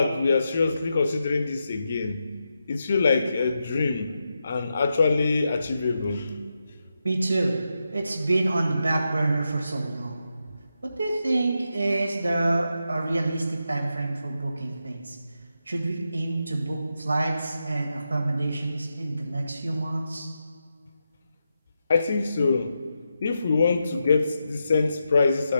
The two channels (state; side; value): inverted; both; correlation -0.87